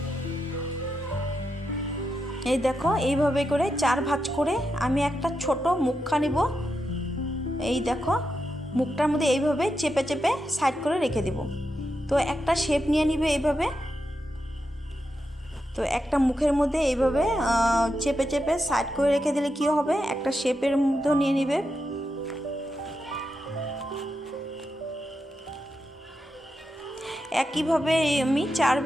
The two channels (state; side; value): normal; both; correlation 0.86